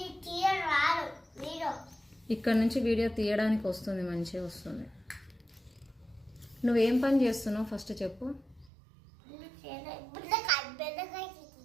ఇక్కడ నుంచి వీడియో తీయడానికి వస్తుంది, మంచిగా వస్తుంది. నువ్వేం పని చేస్తున్నావు ఫస్ట్ చెప్పు.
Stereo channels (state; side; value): drops out; left; at 8.7 s